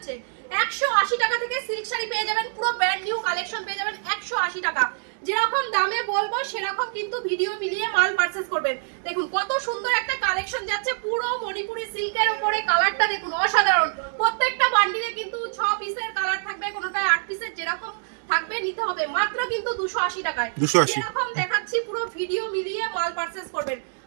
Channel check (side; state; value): left; silent; digital silence